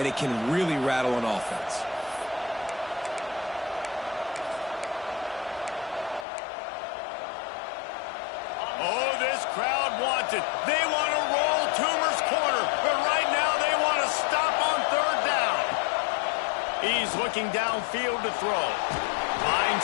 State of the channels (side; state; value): right; drops out; at 6.2 s